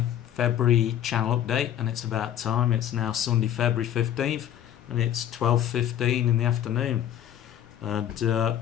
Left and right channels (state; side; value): quieter; right; 10.6 dB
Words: February channel update, and it's about time. It's now Sunday, February 15th, and it's 12:15 in the afternoon. And